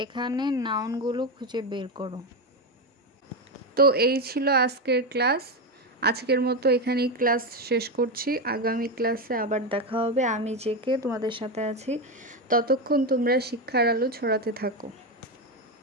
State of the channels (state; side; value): normal; both; correlation 0.12